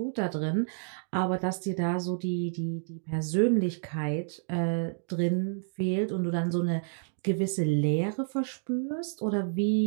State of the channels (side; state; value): left; silent; digital silence